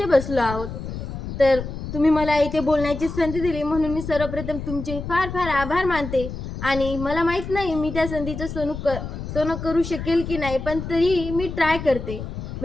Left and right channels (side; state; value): left; noise; rumble, 8 dB below the sound